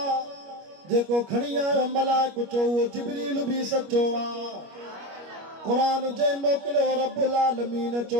جے کو کھڑی آئے ملائک چو وہ جبریل بھی سچو قرآن جے موکلو رب العالمین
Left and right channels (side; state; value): left; late; 25 ms